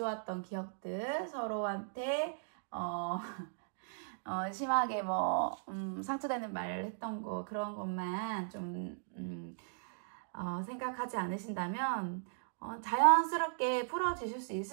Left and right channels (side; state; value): left; silent; digital silence